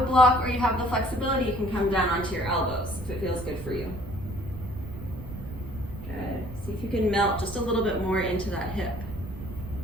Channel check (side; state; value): right; noise; rumble, 11 dB below the sound